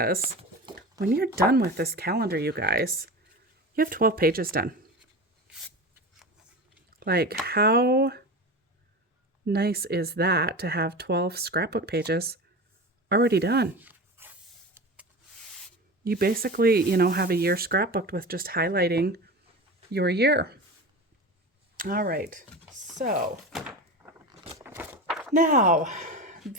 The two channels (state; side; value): normal; both; correlation 0.29